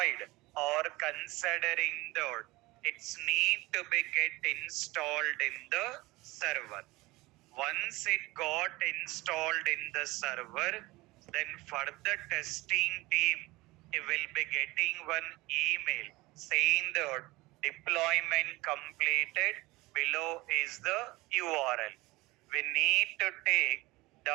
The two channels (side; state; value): left; quieter; 21.1 dB